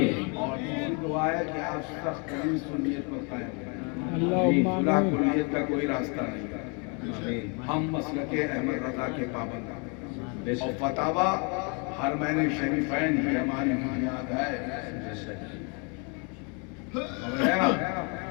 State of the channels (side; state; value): right; quieter; 34.5 dB